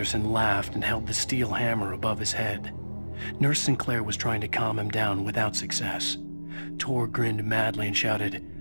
laughed and held the steel hammer above his head. Nurse Sinclair was trying to calm him down without success. Tor grinned madly and shouted,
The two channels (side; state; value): both; inverted; correlation -1.00